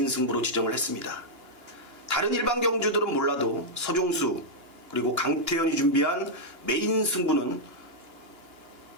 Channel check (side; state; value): left; late; 2.9 ms